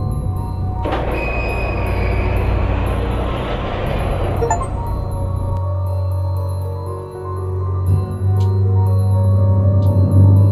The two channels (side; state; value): both; identical; correlation 1.00